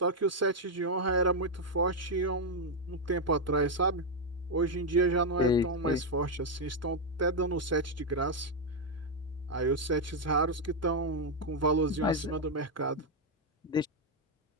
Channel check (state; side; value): normal; both; correlation 0.01